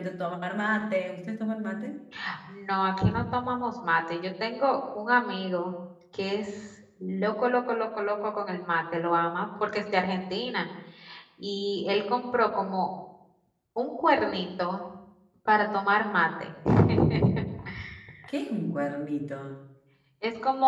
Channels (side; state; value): both; identical; correlation 1.00